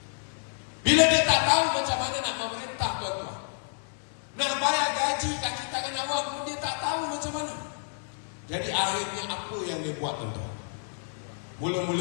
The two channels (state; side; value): silent; right; digital silence